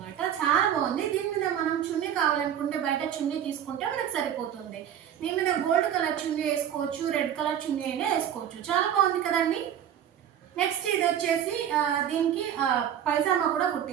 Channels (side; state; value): left; quieter; 9.8 dB